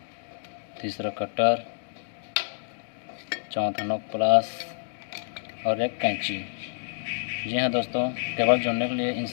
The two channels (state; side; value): silent; right; digital silence